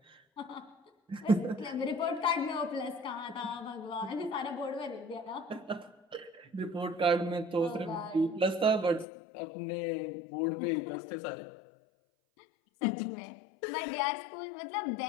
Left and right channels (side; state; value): right; drops out; at 9.1 s